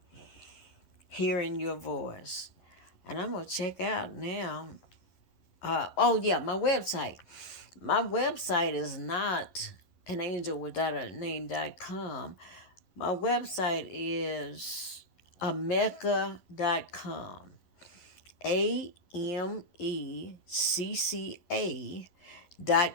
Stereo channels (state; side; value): late; right; 11 ms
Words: Hearing Your Voice. And I'm gonna check out now. My website. My website is not anangelwithoutaname.com. My website is amecca.com.